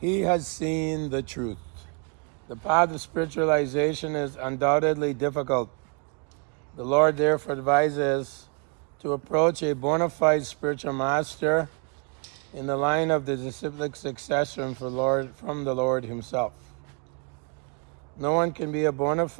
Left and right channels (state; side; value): quieter; left; 37.1 dB